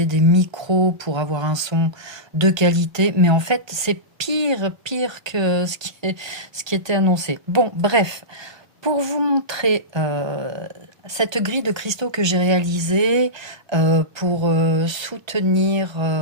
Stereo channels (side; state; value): left; late; 1.2 ms